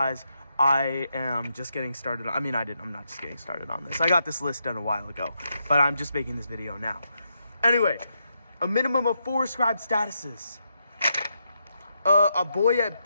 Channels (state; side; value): inverted; both; correlation -0.81